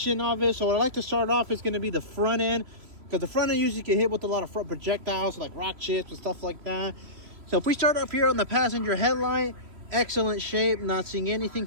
of it. So what I like to start off is going to be the front end, because the front end usually get hit with a lot of front projectiles like rock chips and stuff like that. So if we start up here on the passenger headlight, excellent shape, not seeing anything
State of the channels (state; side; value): late; left; 3.0 ms